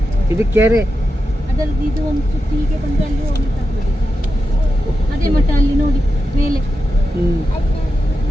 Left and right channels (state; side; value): normal; both; correlation 0.89